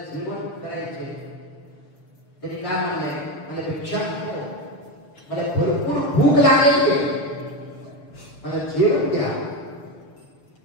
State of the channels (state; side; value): late; right; 6.5 ms